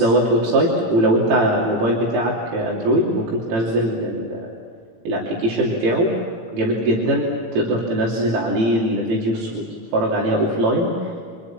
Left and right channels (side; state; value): left; late; 18 ms